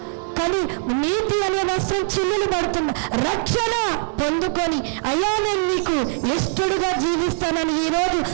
కానీ నీతి అనే వస్త్రం చిల్లులు పడుతున్నా. రక్షణ పొందుకొని అయ్యా నేను నీకు ఇష్టడుగా జీవిస్తానని ఈరోజు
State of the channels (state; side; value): silent; left; digital silence